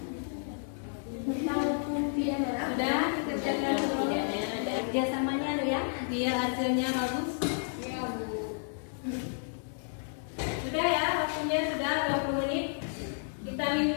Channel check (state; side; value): silent; right; digital silence